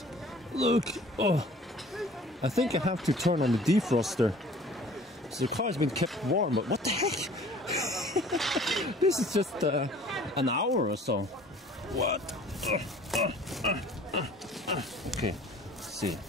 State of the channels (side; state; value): both; normal; correlation 0.50